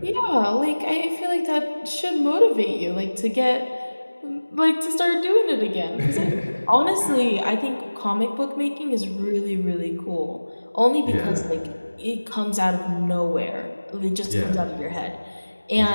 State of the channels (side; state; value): both; inverted; correlation -1.00